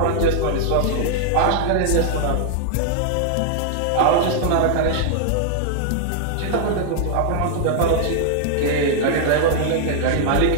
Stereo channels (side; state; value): both; different; correlation -0.01